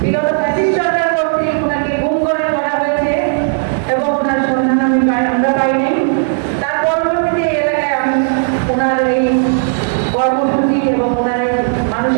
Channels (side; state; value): left; silent; digital silence